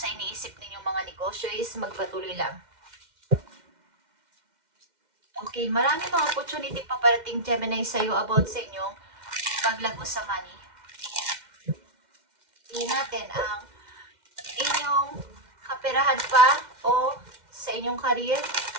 iniisip ninyong mga negosyo is magpatuloy lang. Okay, maraming mga opportunity paparating Gemini sa'yo about sa inyong paglago sa money. Tingnan natin ang inyong kaperahan pa o sa inyong career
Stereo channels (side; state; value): left; late; 2.1 ms